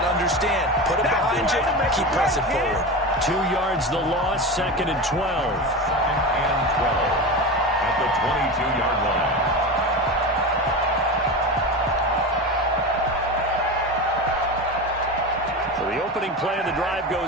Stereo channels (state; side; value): normal; both; correlation 0.24